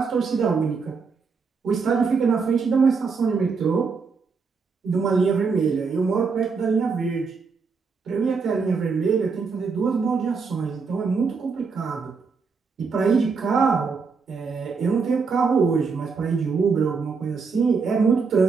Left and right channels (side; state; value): left; quieter; 5.1 dB